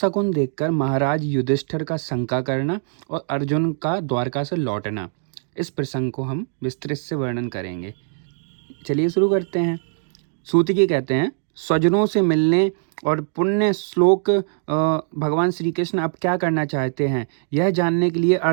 देखकर महाराज युधिष्ठिर का शंका करना और अर्जुन का द्वारका से लौटना, इस प्रसंग को हम विस्तृत से वर्णन करेंगे। चलिए शुरू करते हैं। सूतिकी कहते हैं, स्वजनों से मिलने और पुण्य श्लोक भगवान श्री कृष्ण अब क्या करना चाहते हैं, यह जानने के लिए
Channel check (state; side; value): silent; left; 64 dB below the other